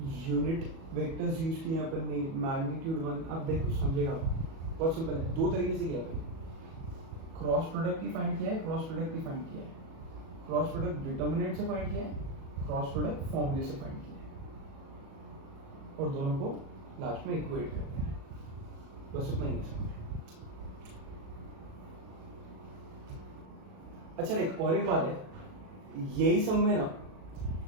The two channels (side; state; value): left; late; 37 ms